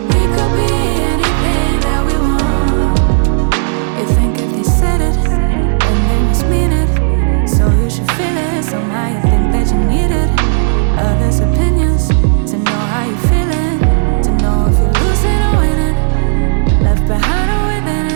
We could be anything that we want. You think if they said it, then they must mean it. So you should feel it, somehow you think that you need it. Others' opinions, to know how you're feeling, to know if you're losing or winning, left behind or within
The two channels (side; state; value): left; silent; digital silence